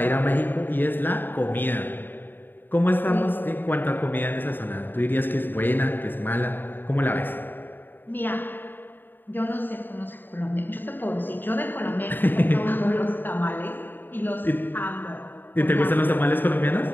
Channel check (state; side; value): late; right; 0.093 ms